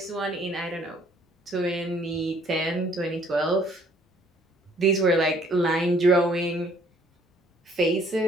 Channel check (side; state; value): both; normal; correlation 0.61